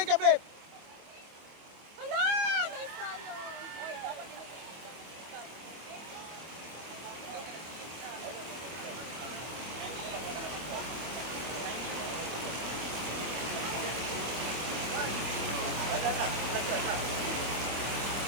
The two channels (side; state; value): left; late; 25 ms